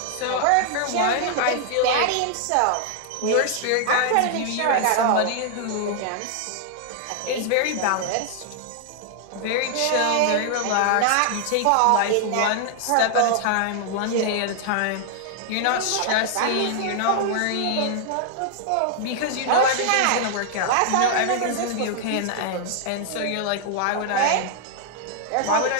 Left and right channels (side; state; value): both; different; correlation 0.00